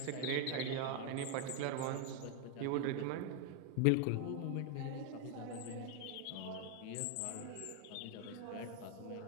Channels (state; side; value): different; both; correlation 0.00